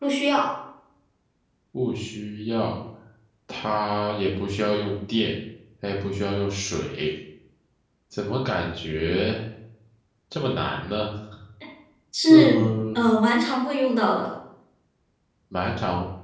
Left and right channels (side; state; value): both; identical; correlation 1.00